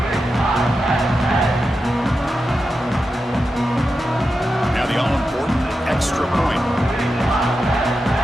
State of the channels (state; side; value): normal; both; correlation 0.90